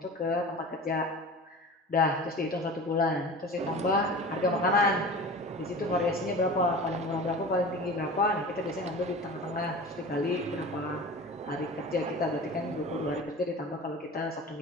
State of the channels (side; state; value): both; normal; correlation 0.36